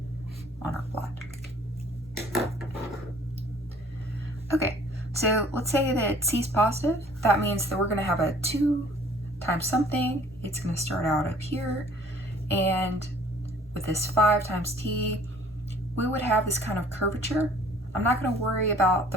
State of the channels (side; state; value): both; normal; correlation 0.54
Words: on our plot. Okay, so let's say that c is positive. That means that we're going to have a 2 times something. It's going to start out up here, and with this 5 times t, we would have this kind of curvature. I'm not going to worry about